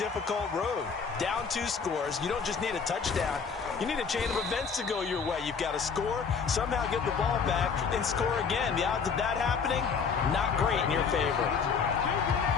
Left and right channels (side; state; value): right; quieter; 5.8 dB